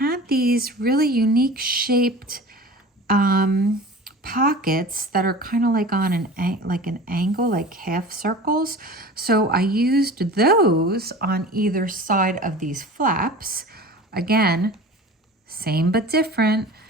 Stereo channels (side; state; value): both; normal; correlation 0.38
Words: these really unique shaped pockets that are kind of like on an angle, like half circles. So I used those on either side of these flaps. Again, same but different.